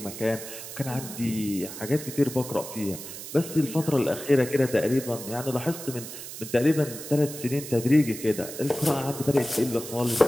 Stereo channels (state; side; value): noise; right; hiss, 11 dB below the sound